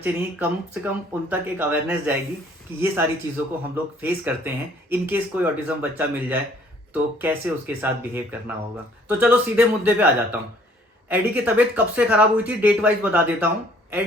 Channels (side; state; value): both; normal; correlation 0.59